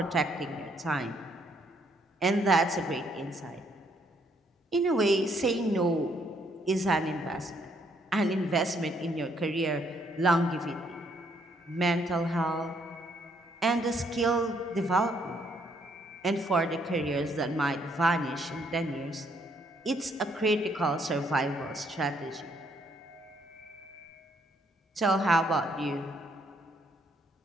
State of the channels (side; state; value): both; normal; correlation 0.70